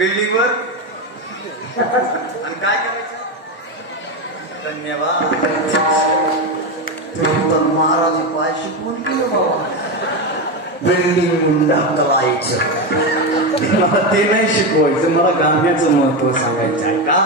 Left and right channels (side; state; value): both; normal; correlation 0.14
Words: आणि काय करायचं? धन्यवाद. तुम्ही तर महाराज पाय शिकवून गेलो बाबा. बिल्डिंग ढकलायचं मला ते नाही शिकवायचं, मला गाण्याचं महत्व सांगायचं आहे. का